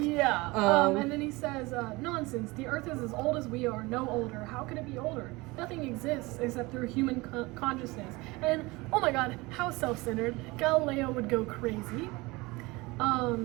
Yeah. And then he says, nonsense. The earth is as old as we are, no older. How could it be older? Nothing exists except through human consciousness. And, oh my god, how self-centered. Galileo would go crazy.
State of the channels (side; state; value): left; quieter; 23.0 dB